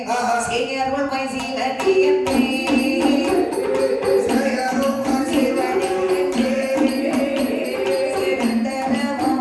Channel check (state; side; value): identical; both; correlation 1.00